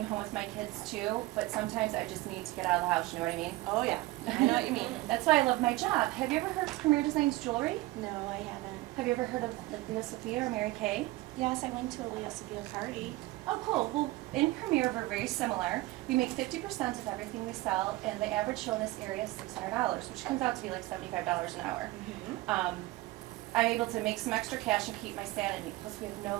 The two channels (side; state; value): left; quieter; 19.0 dB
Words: home with my kids too, but sometimes I just need to get out of the house, you know what I mean? Oh yeah, I know what you mean. That's why I love my job. Have you ever heard of Premier Designs Jewelry? No, I haven't. Have you ever heard of like Leo Sophia or Mary Kay? Yes, I went to a Leo Sophia party. Oh, cool. Well, in Premier, we're very similar. We make 50% of everything we sell, and the average show in this area is $600, which comes out to be like $75 an hour. I'm able to make some extra cash and keep my sanity. Plus, we have